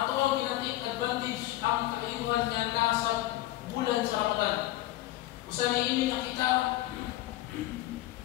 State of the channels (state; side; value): quieter; right; 16.2 dB